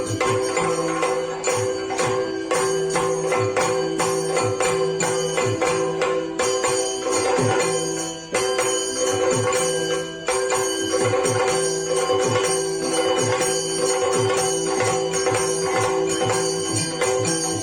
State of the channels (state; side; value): identical; both; correlation 1.00